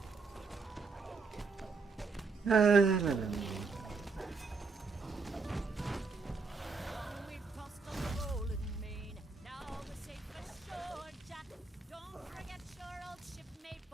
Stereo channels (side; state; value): left; quieter; 4.6 dB